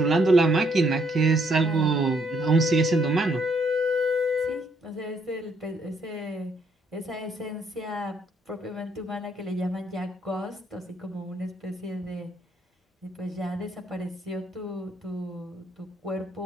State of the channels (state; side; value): normal; both; correlation 0.70